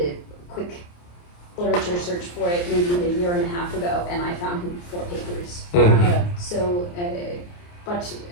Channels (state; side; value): late; right; 28 ms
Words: quick literature search for it maybe a year and a half ago, and I found 4 papers. So, but